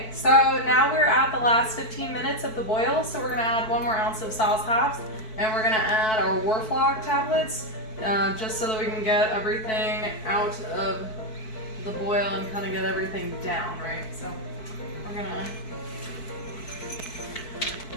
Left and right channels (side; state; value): right; late; 4.6 ms